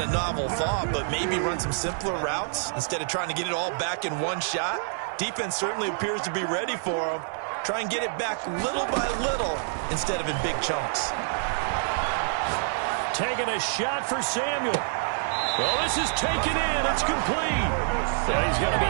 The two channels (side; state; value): left; silent; digital silence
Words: a novel thought, but maybe run some simpler routes instead of trying to get it all back in one shot. Defense certainly appears to be ready for him. Try and get it back little by little instead of in big chunks. Taking a shot for Samuel. Well, this is taken in. It's complete. He's going to